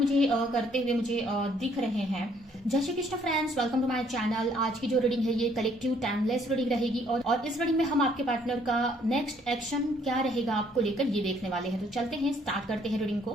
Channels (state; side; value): normal; both; correlation 0.64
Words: करते हुए मुझे दिख रहे हैं। Jai Shri Krishna friends, welcome to my channel. आज की जो रीडिंग है ये कलेक्टिव टाइमलेस रीडिंग रहेगी और इस रीडिंग में हम आपके पार्टनर का नेक्स्ट एक्शन क्या रहेगा आपको लेकर ये देखने वाले हैं। तो चलते हैं, स्टार्ट करते हैं रीडिंग